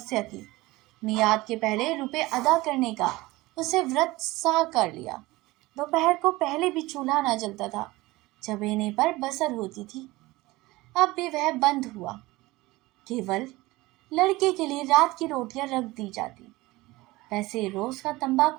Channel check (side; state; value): left; quieter; 20.2 dB